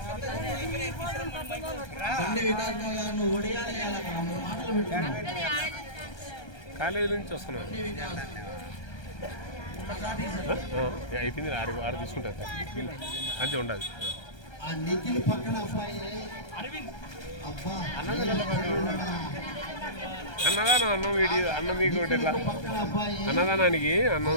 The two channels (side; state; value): right; late; 1.3 ms